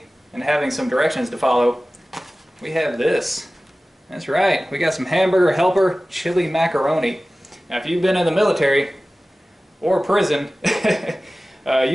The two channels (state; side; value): normal; both; correlation 0.97